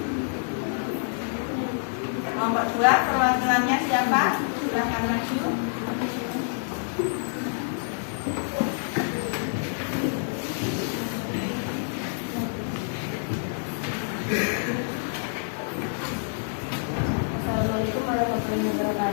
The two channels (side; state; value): right; silent; digital silence